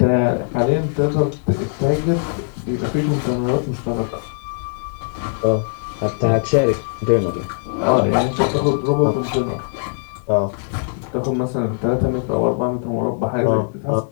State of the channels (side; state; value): right; silent; digital silence